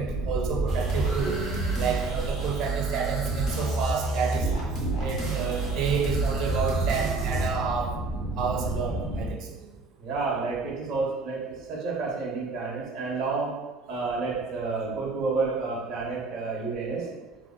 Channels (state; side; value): quieter; left; 3.7 dB